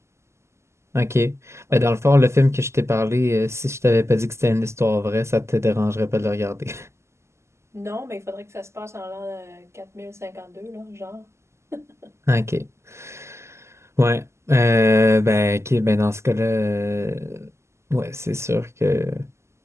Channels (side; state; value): left; late; 0.13 ms